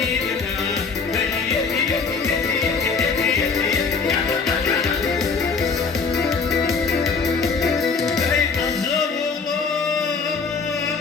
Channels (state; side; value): quieter; right; 4.9 dB